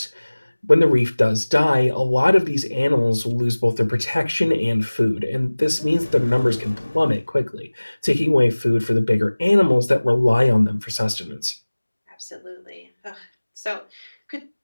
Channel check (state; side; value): inverted; both; correlation -1.00